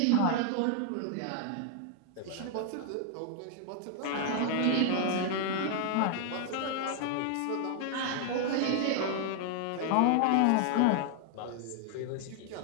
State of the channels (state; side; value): different; both; correlation 0.00